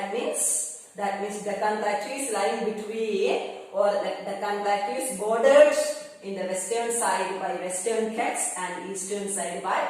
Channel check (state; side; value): identical; both; correlation 1.00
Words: means Deccan Plateau is lying between, or Deccan Plateau is bordered in the western side by Western Ghats and eastern side by